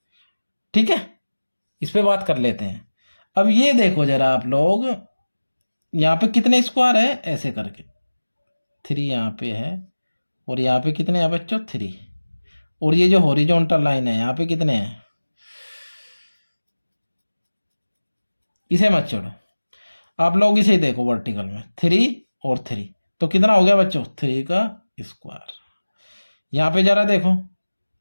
ठीक है, इस पे बात कर लेते हैं। अब ये देखो जरा आप लोग, यहाँ पे कितने स्क्वायर है, ऐसे करके 3 यहाँ पे है, और यहाँ पे कितने हैं बच्चों 3, और ये जो हॉरिजॉन्टल लाइन है यहाँ पे कितने हैं, इसे मत छोड़ो, आप लोग इसे देखो वर्टिकल में 3 और 3, तो कितना हो गया बच्चों 3 का स्क्वायर। यहाँ पे जरा देखो,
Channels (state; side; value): inverted; both; correlation -1.00